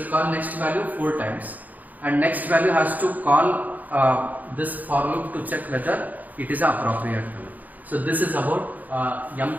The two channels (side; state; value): left; late; 0.080 ms